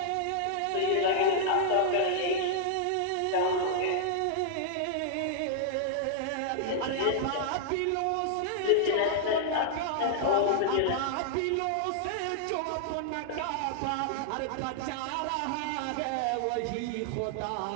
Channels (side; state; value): both; different; correlation -0.01